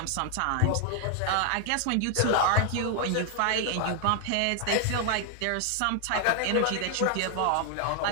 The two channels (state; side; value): different; both; correlation 0.00